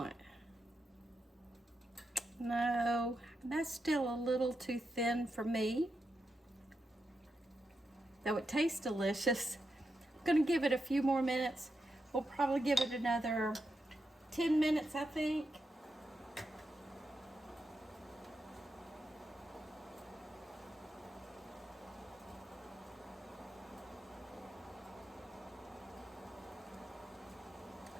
No, that's still a little too thin for me, though it tastes delicious. I'm going to give it a few more minutes. We'll probably give it another 10 minutes, I think.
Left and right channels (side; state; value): both; normal; correlation 0.86